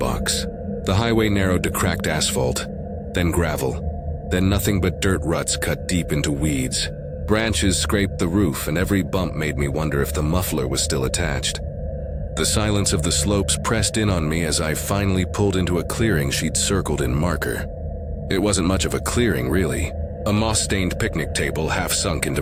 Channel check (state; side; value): identical; both; correlation 1.00